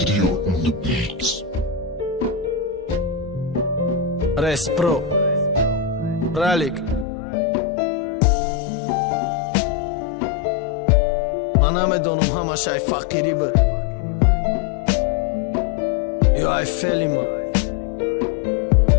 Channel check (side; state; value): right; drops out; at 7.1 s